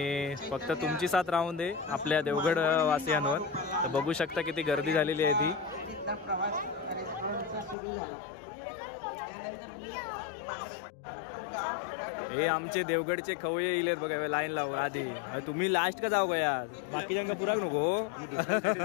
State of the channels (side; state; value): right; drops out; at 7.8 s